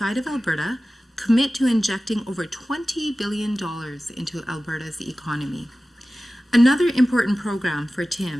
of Alberta commit to injecting over $20 billion into Alberta's economy. Another important program for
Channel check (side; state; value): both; normal; correlation 0.96